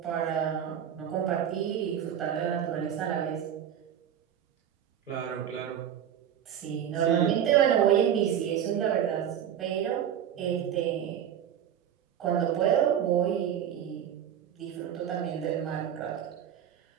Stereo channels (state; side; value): quieter; left; 9.6 dB